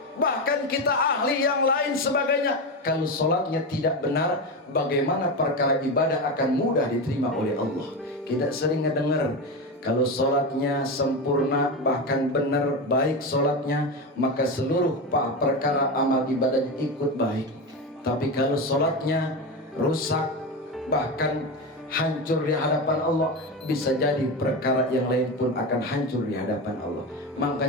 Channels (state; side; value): normal; both; correlation 0.18